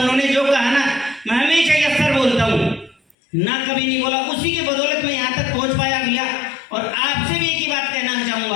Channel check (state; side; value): drops out; right; at 3.2 s